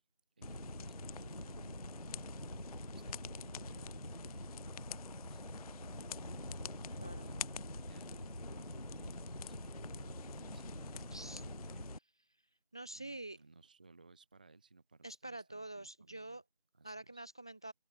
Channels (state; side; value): inverted; both; correlation -0.60